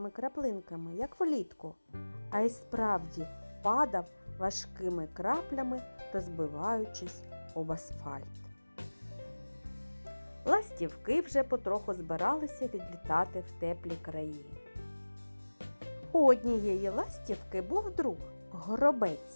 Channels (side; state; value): both; inverted; correlation -1.00